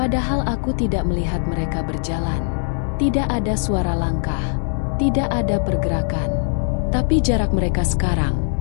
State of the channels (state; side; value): silent; right; 59 dB below the other